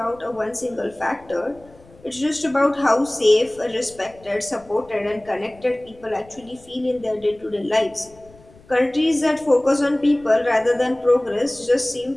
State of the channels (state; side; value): noise; left; rumble, 25 dB below the sound